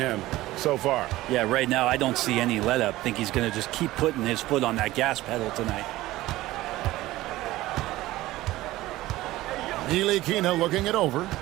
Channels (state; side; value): quieter; left; 17.0 dB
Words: so far. Yeah, right now I don't see any let up. Think he's going to just keep putting his foot on that gas pedal tonight. Ntilikina looking it over.